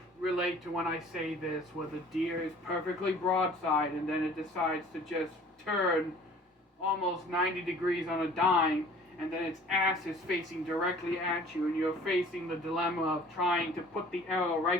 relate to when I say this, where the deer is perfectly broadside and then it decides to just turn almost 90 degrees on a dime, and then its ass is facing directly at you, and you're facing the dilemma of trying to put the arrow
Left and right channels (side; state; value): both; normal; correlation 0.50